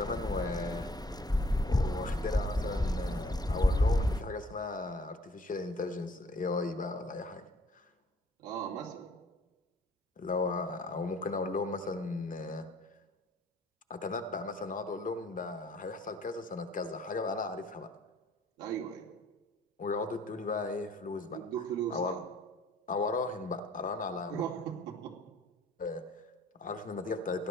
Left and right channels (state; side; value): normal; both; correlation 0.57